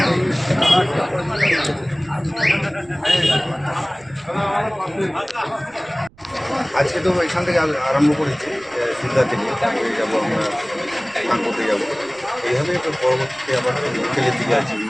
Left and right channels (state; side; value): noise; right; rumble, 28 dB below the sound